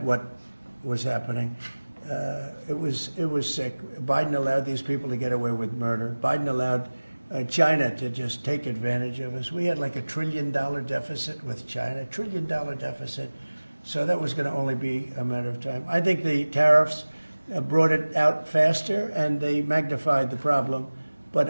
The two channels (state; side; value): inverted; both; correlation -1.00